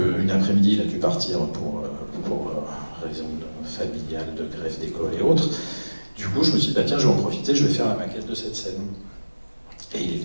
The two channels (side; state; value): both; inverted; correlation -1.00